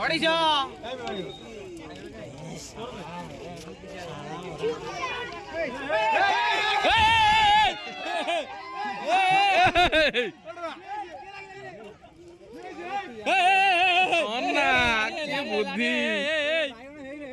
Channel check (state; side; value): identical; both; correlation 1.00